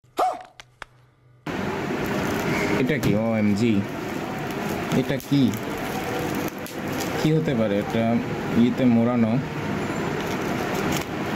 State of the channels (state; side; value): identical; both; correlation 1.00